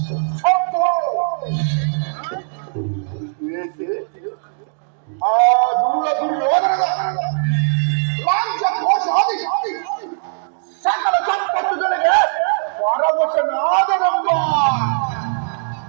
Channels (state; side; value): silent; left; digital silence